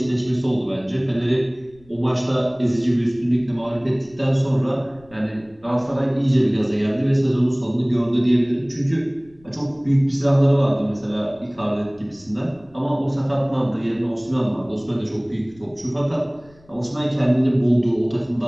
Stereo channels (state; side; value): noise; left; rumble, 28 dB below the sound